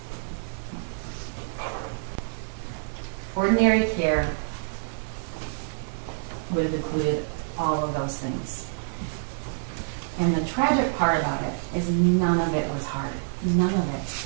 Ordinary care would have included all of those things. And the tragic part about it is none of it was hard. None of it.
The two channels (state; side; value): silent; left; digital silence